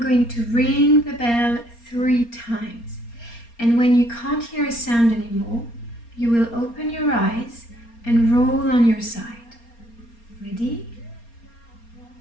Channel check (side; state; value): right; late; 4.3 ms